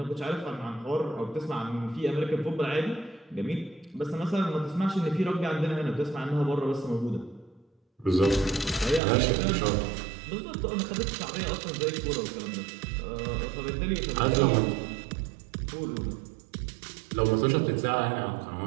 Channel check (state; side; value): drops out; left; at 9.0 s